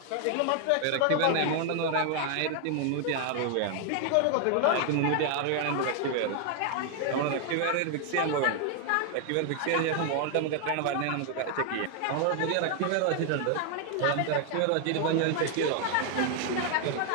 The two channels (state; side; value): different; both; correlation 0.00